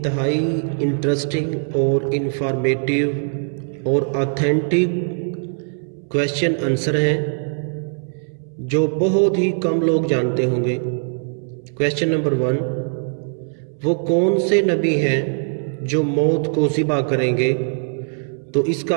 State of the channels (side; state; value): left; silent; 65 dB below the other